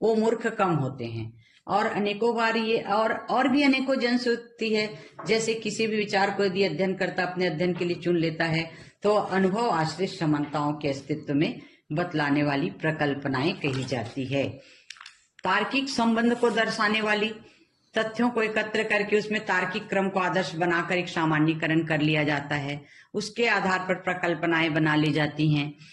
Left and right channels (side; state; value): both; identical; correlation 1.00